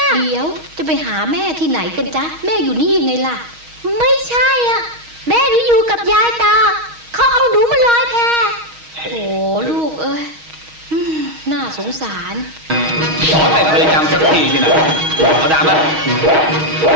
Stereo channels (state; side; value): late; left; 6.3 ms